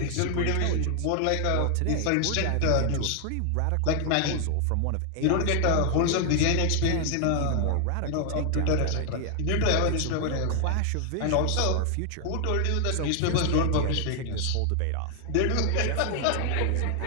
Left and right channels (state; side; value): different; both; correlation 0.00